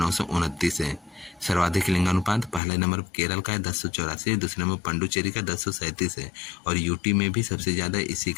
है। सर्वाधिक लिंगानुपात पहले नंबर केरल का है 1084, दूसरे नंबर पंडुचेरी का 1037 है और यूटी में भी सबसे ज्यादा इसी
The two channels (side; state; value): right; drops out; at 2.6 s